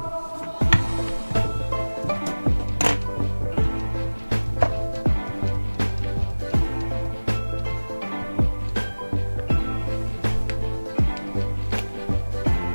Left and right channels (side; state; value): both; inverted; correlation -1.00